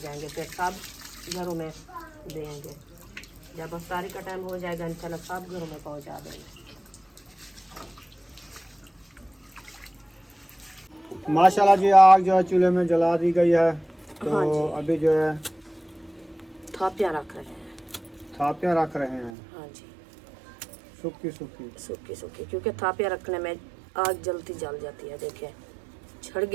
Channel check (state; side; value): drops out; left; at 19.3 s